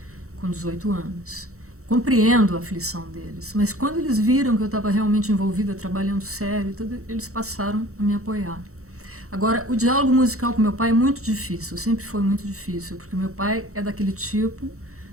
com 18 anos. Compreendo a aflição deles, mas quando eles viram que eu estava realmente envolvida, trabalhando sério, tudo, eles passaram a me apoiar. Agora, o diálogo musical com meu pai é muito difícil, sempre foi muito difícil, porque meu pai é daquele tipo,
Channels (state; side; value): late; left; 0.64 ms